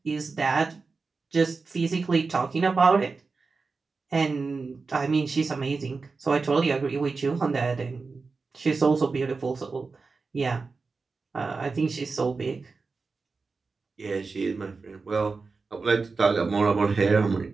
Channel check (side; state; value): left; quieter; 4.3 dB